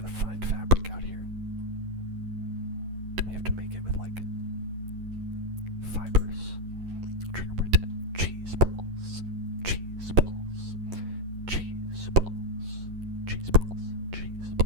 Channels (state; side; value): late; left; 11 ms